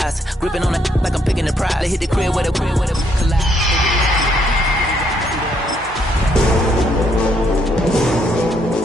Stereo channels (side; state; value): both; normal; correlation 0.72